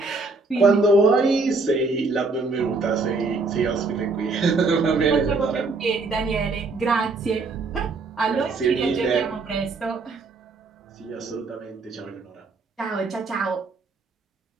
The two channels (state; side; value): quieter; left; 3.8 dB